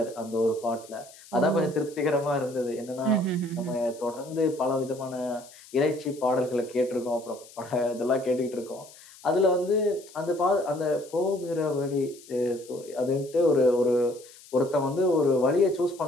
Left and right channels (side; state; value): left; noise; hiss, 21 dB below the sound